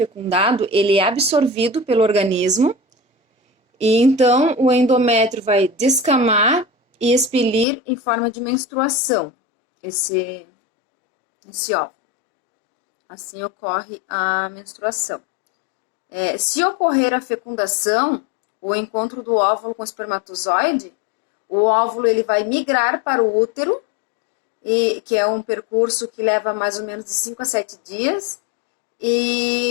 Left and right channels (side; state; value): right; drops out; at 7.7 s